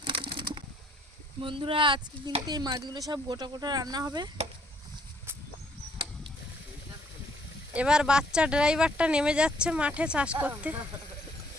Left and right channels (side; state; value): both; normal; correlation 0.65